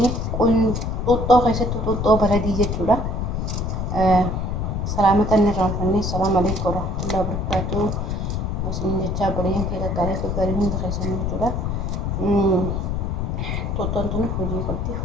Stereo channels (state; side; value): noise; left; rumble, 1 dB below the sound